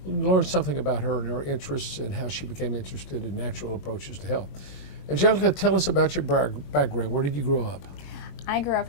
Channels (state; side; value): late; right; 21 ms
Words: learn something about her and her interests and how she became interested in natural approaches to health. Angelica, tell us about your background. Where did you grow up? I grew up